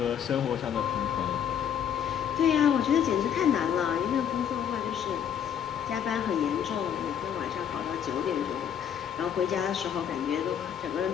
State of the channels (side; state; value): right; quieter; 8.7 dB